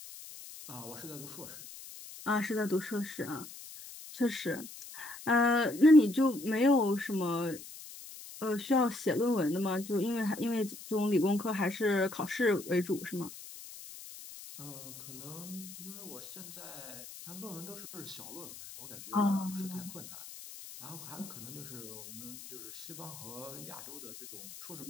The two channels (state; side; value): noise; left; hiss, 14 dB below the sound